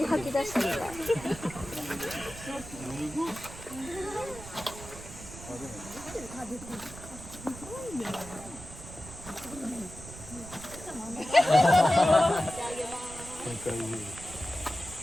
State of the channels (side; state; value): right; noise; rumble, 14 dB below the sound